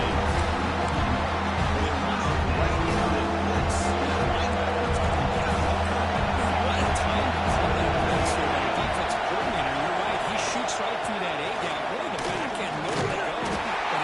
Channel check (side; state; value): both; identical; correlation 1.00